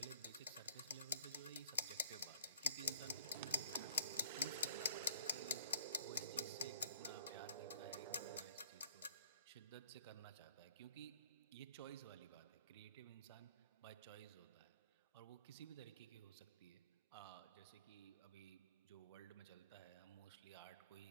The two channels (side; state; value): both; inverted; correlation -0.60